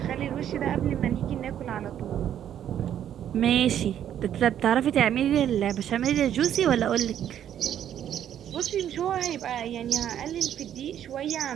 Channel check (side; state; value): left; quieter; 10.2 dB